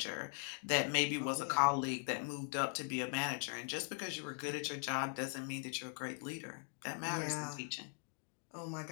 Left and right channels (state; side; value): silent; right; 51 dB below the other